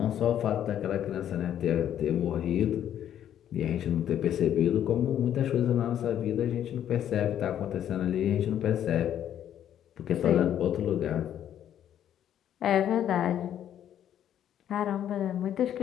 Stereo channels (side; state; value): right; quieter; 10.4 dB